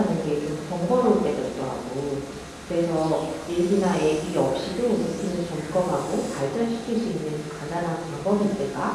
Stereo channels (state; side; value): identical; both; correlation 1.00